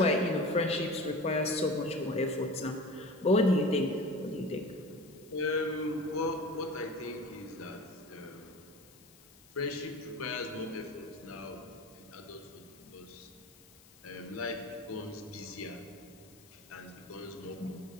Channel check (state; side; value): noise; left; hiss, 24 dB below the sound